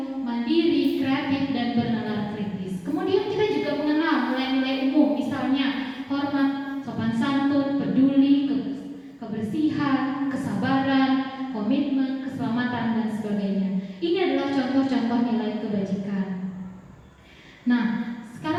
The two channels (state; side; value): identical; both; correlation 1.00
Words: mandiri, kreatif, dan bernalar kritis. Kemudian kita juga mengenal nilai-nilai umum, misalnya hormat, sopan santun, peduli, kebersihan, kesabaran, komitmen, keselamatan, dan sebagainya. Ini adalah contoh-contoh nilai kebajikan. Nah,